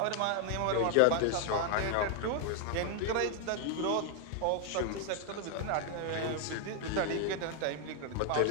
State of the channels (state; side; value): different; both; correlation 0.00